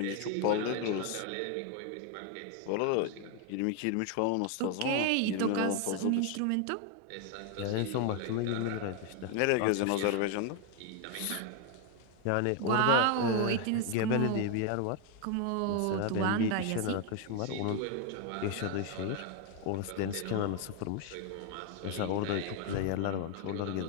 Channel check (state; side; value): different; both; correlation 0.01